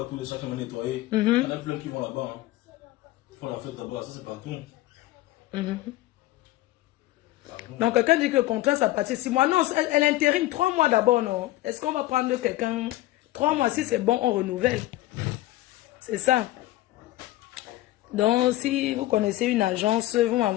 tous les chaque année nettoyé. Il y en a plein qui vont là-bas. Ils font la fête là-bas, ça c'est partout. Donc quelqu'un dit que le contrat ça partit 6 mois. Non, elle intérim 3 mois d'abord, non? Est-ce qu'on va prendre quelqu'un 3 mois, si c'est bon, on renouvelle. C'est ça. Donc, si vous connaissez une agence, vous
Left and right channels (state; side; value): quieter; right; 16.7 dB